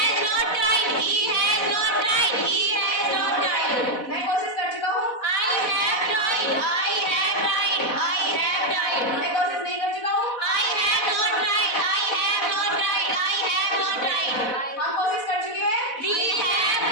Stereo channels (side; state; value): right; late; 4.1 ms